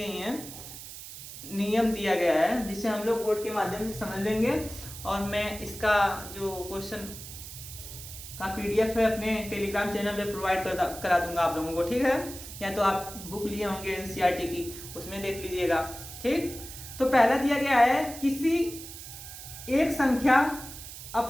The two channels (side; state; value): right; noise; hiss, 12 dB below the sound